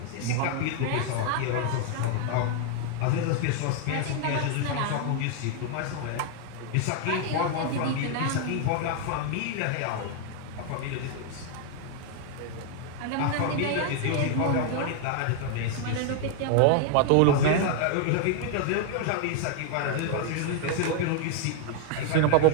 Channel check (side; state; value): both; different; correlation 0.00